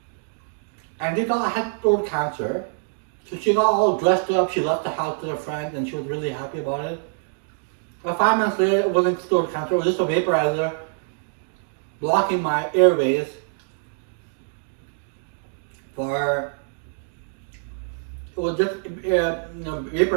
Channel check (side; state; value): left; silent; digital silence